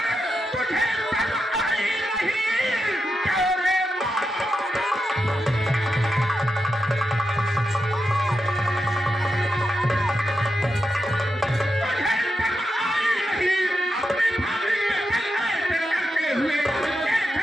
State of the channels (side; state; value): both; normal; correlation 0.87